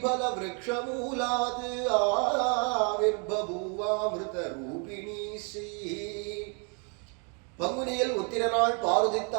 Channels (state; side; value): quieter; left; 37.6 dB